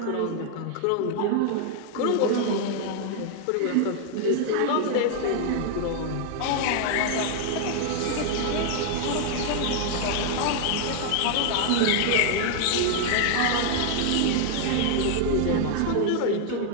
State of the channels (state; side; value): different; both; correlation 0.00